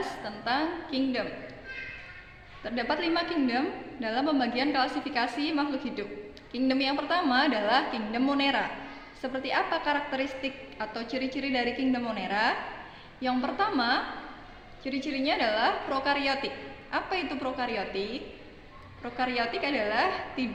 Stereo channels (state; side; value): identical; both; correlation 1.00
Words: tentang kingdom. Terdapat 5 kingdom dalam pembagian klasifikasi makhluk hidup. Kingdom yang pertama adalah kingdom Monera. Seperti apa karakteristik atau ciri-ciri dari kingdom Monera? Yang pertama, ciri-cirinya adalah prokariotik. Apa itu prokariotik? Prokariotik adalah